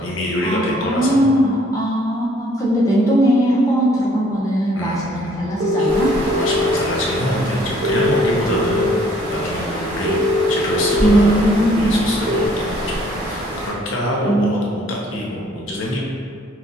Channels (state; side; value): normal; both; correlation 0.61